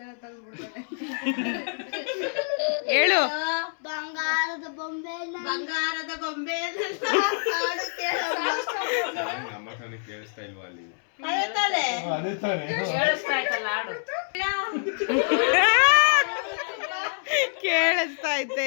ಹೇಳು. ಬಂಗಾರದ ಬೊಂಬೆ ಬಂಗಾರದ ಗೊಂಬೆ ಕೇಳಿಸ್ತಾ ಇಲ್ವಾ ಅಲ್ಲಿ? ಕೇಳಿಸ್ತಾ ಆಯ್ತಲ್ಲ ಹಾಡು. ಕೇಳಿಸ್ತಾ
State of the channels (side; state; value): right; silent; 61 dB below the other